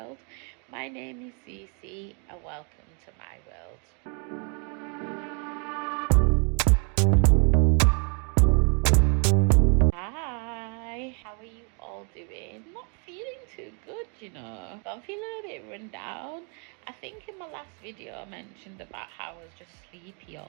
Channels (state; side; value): quieter; left; 37.8 dB